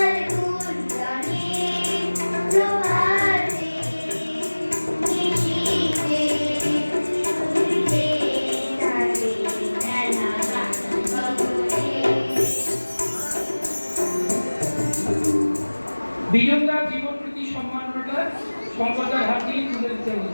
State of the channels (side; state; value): both; inverted; correlation -1.00